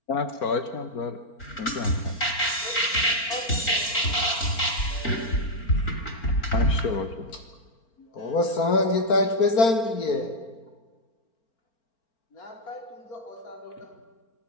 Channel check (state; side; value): late; right; 4.4 ms